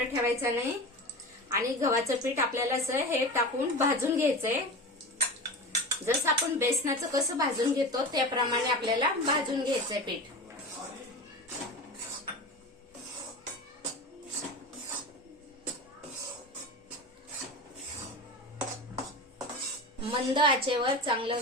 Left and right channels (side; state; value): both; normal; correlation 0.29